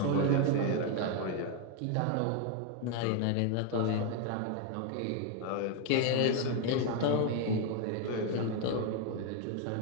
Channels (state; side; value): different; both; correlation 0.01